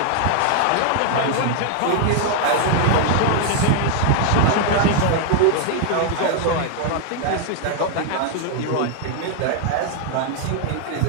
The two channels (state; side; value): different; both; correlation 0.00